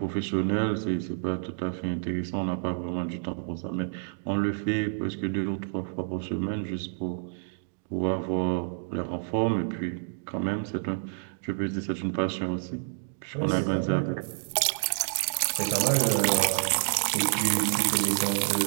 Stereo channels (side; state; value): left; silent; digital silence